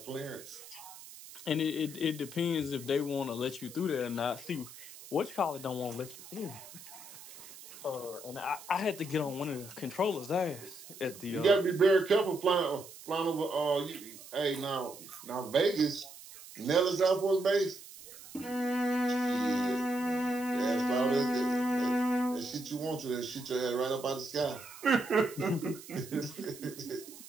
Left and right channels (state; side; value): noise; right; hiss, 16 dB below the sound